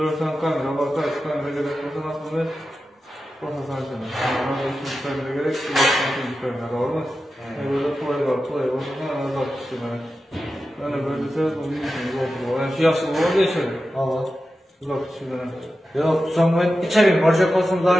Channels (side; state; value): both; normal; correlation 0.92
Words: tane kamera var, kaç kamera gerek olsa aslında basasan sana. Ama 2 kamera gerek, 2 kamera var mı? Böyle kolay basasan anazak işte bana. Yani böyle de onun için oldu. Yani şu yaşlı oldu ya şöyle. Allah. Uzak işte bana. Yok, sonra içeri borcak olsun, daha